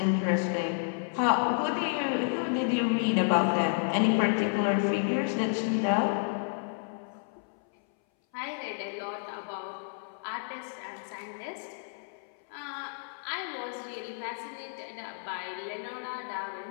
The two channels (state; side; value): silent; right; 57 dB below the other